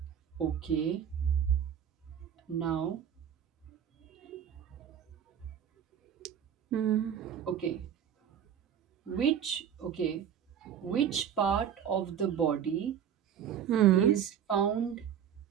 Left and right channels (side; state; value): left; quieter; 8.9 dB